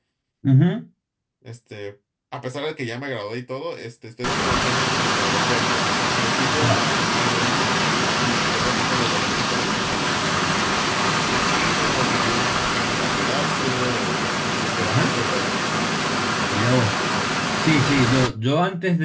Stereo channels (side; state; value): both; identical; correlation 1.00